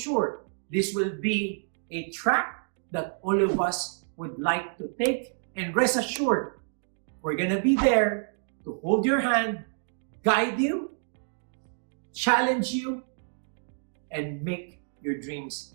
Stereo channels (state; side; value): silent; left; digital silence